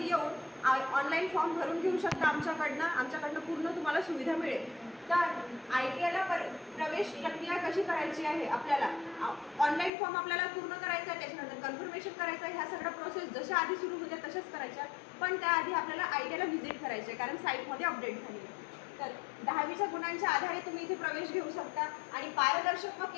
येऊन ऑनलाईन फॉर्म भरून घेऊ शकता आमच्याकडनं पूर्ण तुम्हाला सुविधा मिळेल। तर ITIला प्रवेश प्रक्रिया कशी करायची आहे, आपल्याला ऑनलाईन फॉर्म आपल्याला पूर्ण करायचा आहे, त्याच्यानंतर कन्फर्मेशन करायचं आहे, ह्या सगळ्या प्रोसेस जशा आधी सुरू होत्या तशाच करायच्या, पण त्याआधी आपल्याला ITIला व्हिजिट करायचे आहे कारण साईटमध्ये अपडेट झाली आहे। तर 10वीच्या गुणांच्या आधारे तुम्ही इथे प्रवेश घेऊ शकता आणि पारदर्शक व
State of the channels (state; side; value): drops out; right; at 9.9 s